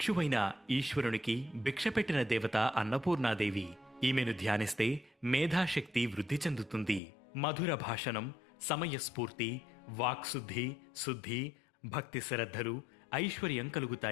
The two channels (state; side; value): drops out; right; at 7.0 s